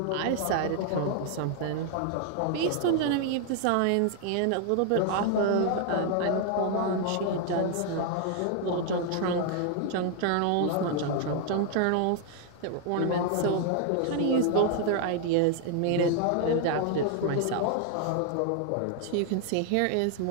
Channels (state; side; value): different; both; correlation 0.00